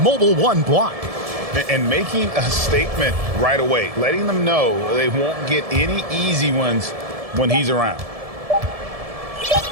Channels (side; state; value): left; late; 1.7 ms